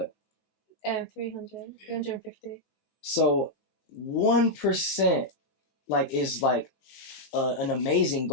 350. So 1%, like, is like an amazing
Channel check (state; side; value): late; right; 20 ms